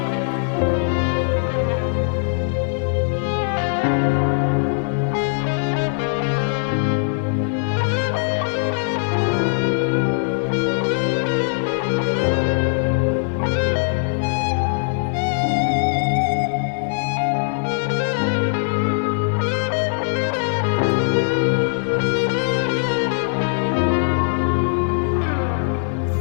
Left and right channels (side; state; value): right; silent; 65 dB below the other